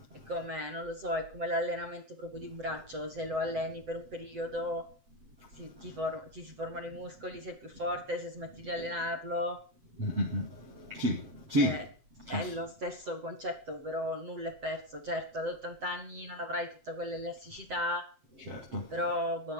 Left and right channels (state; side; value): late; left; 7.9 ms